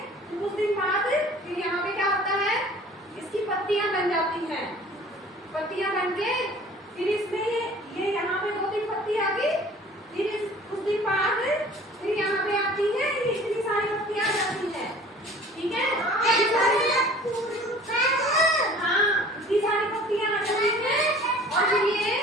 कुछ दिन बाद फिर यहाँ पे क्या होता है? इसकी पत्तियां बन जाती हैं। पत्तियां बन के फिर इसमें ये यहाँ पे 2-3 पत्ती आ गई। फिर कुछ दिन बाद फिर यहाँ पे आती है, इतनी सारी पत्तियां आ जाती हैं, ठीक है, हाँ इतनी सारी पत्तियां आ जाती हैं। और फिर ये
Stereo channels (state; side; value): normal; both; correlation 0.47